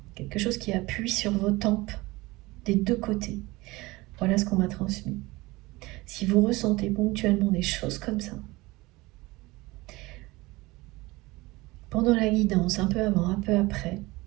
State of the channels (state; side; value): quieter; left; 21.3 dB